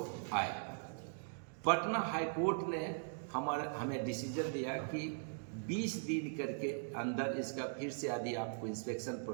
आए। पटना हाई कोर्ट ने हमें डिसीजन दिया कि 20 दिन करके अंदर इसका फिर से यदि आपको इंस्पेक्शन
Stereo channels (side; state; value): left; silent; digital silence